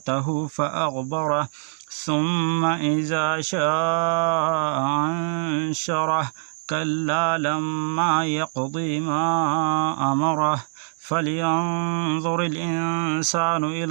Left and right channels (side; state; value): left; silent; digital silence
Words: فأغبره ثم إذا شاء أنشره كلا لما يقضي ما أمره فلينظر الإنسان